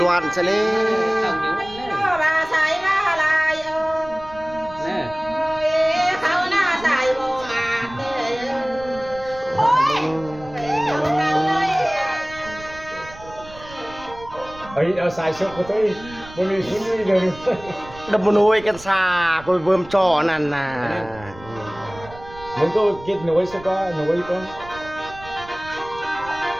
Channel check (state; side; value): noise; right; rumble, 18 dB below the sound